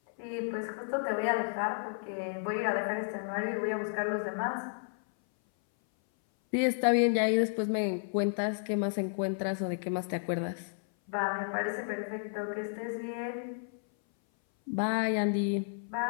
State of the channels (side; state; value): right; silent; 56 dB below the other